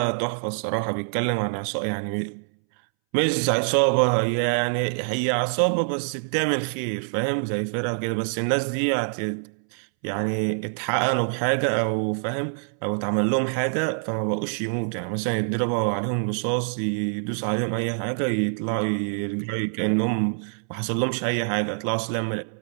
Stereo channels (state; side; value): silent; left; 62 dB below the other